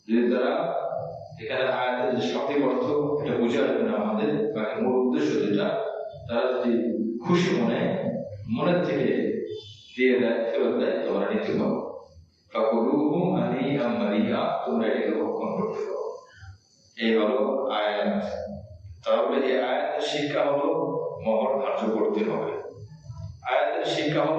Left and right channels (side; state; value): both; identical; correlation 1.00